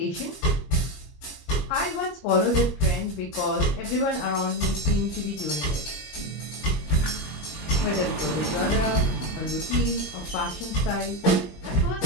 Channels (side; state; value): right; late; 26 ms